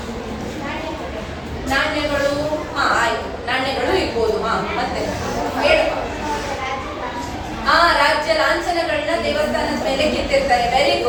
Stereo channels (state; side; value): identical; both; correlation 1.00